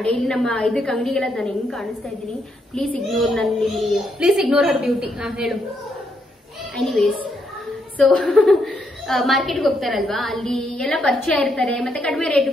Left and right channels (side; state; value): both; normal; correlation 0.77